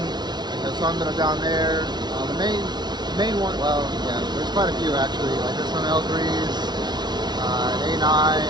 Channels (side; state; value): left; late; 0.20 ms